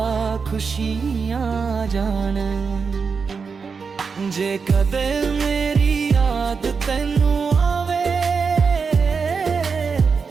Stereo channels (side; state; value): left; quieter; 5.4 dB